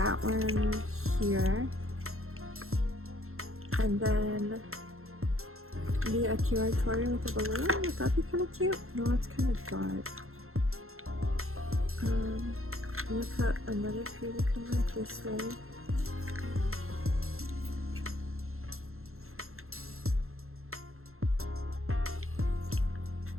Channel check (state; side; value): late; left; 0.62 ms